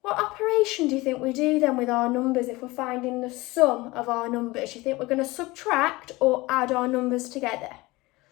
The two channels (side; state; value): right; quieter; 21.3 dB